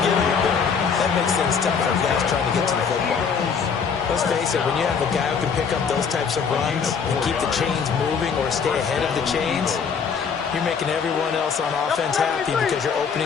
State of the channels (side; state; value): right; quieter; 6.2 dB